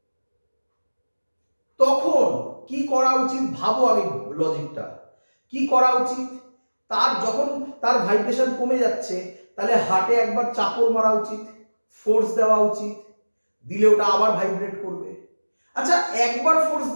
তখন কি করা উচিত ভাবো আগে লজিকটা। কি করা উচিত? যখন তার ভাইব্রেশন কমে যাচ্ছে তাহলে হার্টে একবার চাপড় মারা উচিত, ফোর্স দেওয়া উচিত, দিলে ওটা আবার ভাইব্রেট করবে। আচ্ছা, একবার ফোর্স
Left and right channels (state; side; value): inverted; both; correlation -1.00